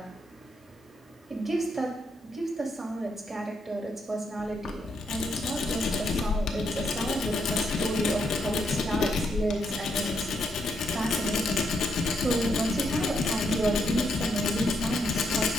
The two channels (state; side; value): normal; both; correlation 0.77